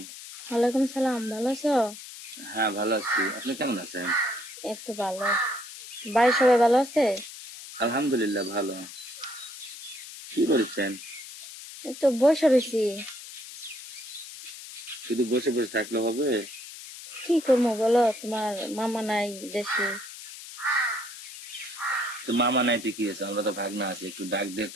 ওয়ালাইকুম সালাম। ভালো আছো? হ্যাঁ, ভালো আছি। আপনি কেমন আছেন? এই তো ভালো। বাড়ির সবাই ভালো আছে? আলহামদুলিল্লাহ ভালো। কি করছেন? এই তো বসে রয়েছি। শুধু বসে বসে থাকলে হবে? কি করবো বলো, তোমার মামা নাই দেশে। তো মামা নাইতে কি হয়েছে? আমরা তো ভাগনা আছি, একটু ডাক দিয়ে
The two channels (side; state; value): left; noise; hiss, 13 dB below the sound